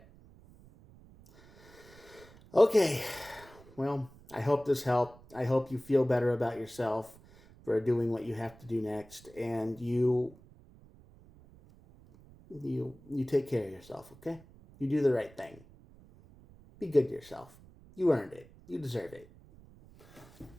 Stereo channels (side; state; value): right; noise; rumble, 23 dB below the sound